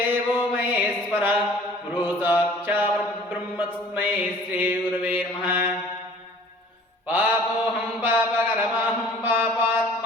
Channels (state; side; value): normal; both; correlation 0.50